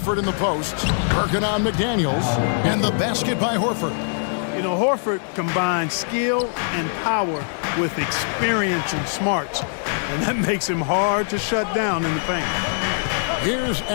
in the post. Working on McDaniels. And the basket by Horford. You know, Horford combines skill and power with experience and smarts. And that makes him hard to shut down in the paint. Here's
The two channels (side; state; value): right; silent; digital silence